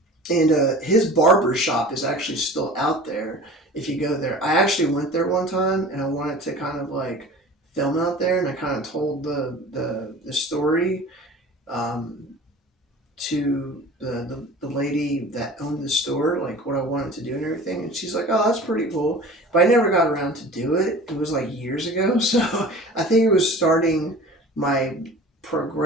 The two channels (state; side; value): normal; both; correlation 0.40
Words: And his barber shop is actually still out there if you go there. I actually went there one time and I wanted to kind of like film out there, and I kind of told the story um, to the lady that owned the store, like what I wanted to do and everything. And she's like, oh, that's pretty cool. But I never got around to do it. It was like years ago. So I think it was starting my